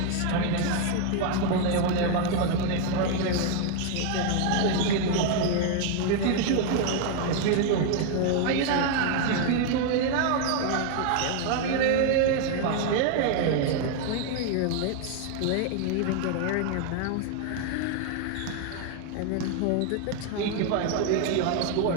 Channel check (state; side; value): different; both; correlation 0.00